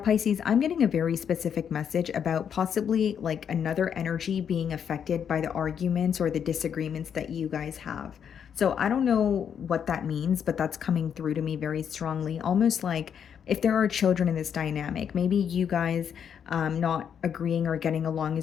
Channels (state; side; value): quieter; right; 8.0 dB